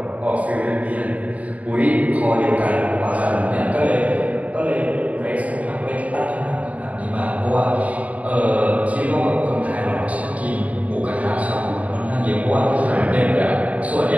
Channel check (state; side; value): late; left; 0.069 ms